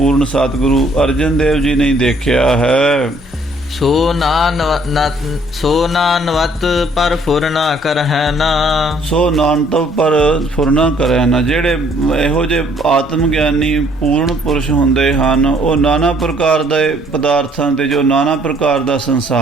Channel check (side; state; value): both; normal; correlation 0.63